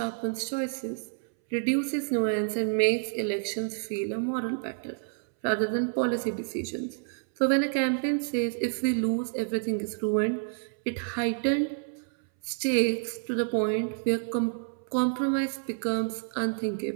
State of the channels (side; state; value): left; silent; 59 dB below the other